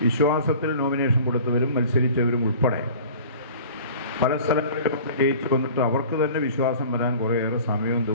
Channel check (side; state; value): both; inverted; correlation -0.44